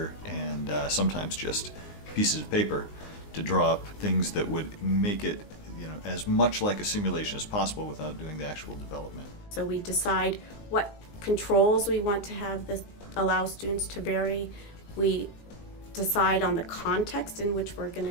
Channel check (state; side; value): late; right; 19 ms